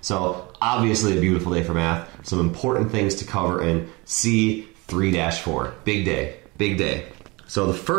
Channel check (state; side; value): quieter; left; 25.2 dB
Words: So obviously a beautiful day for math, some important things to cover in C3-4. Big day, big day. So the